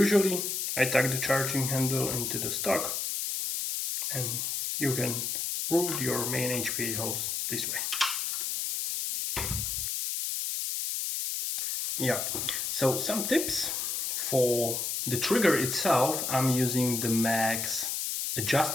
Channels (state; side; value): noise; left; hiss, 1 dB below the sound